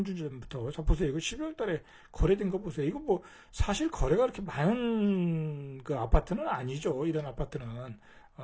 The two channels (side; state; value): both; identical; correlation 1.00